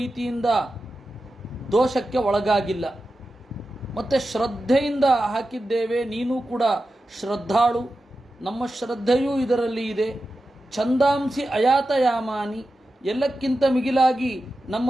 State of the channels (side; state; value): both; normal; correlation 0.92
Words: ದೋಷಕ್ಕೆ ಒಳಗಾಗಿಲ್ಲ. ಮತ್ತು ಶ್ರದ್ಧೆಯಿಂದ ಹಾಕಿದ್ದೇವೆ. ನೀನು ಕೂಡ ಶ್ರದ್ಧಾಳು, ನಮ್ಮ ಶ್ರದ್ಧೆಯೂ ಇದರಲ್ಲಿ ಇದೆ. ಛಂದಾಂಸಿ ಅಯಾತಯಾಮಾನಿ, ಎಲ್ಲಕ್ಕಿಂತ ಮಿಗಿಲಾಗಿ ನಮ್ಮ